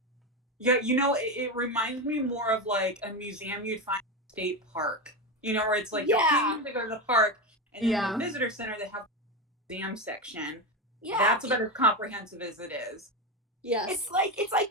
Yeah, it reminds me more of like a museum you'd find in a state park. Where it's like you're paying to go to the park, and then the visitor center they have the museum section. Yeah. That's about as comprehensive as it is. Yes. It's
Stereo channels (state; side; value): normal; both; correlation 0.15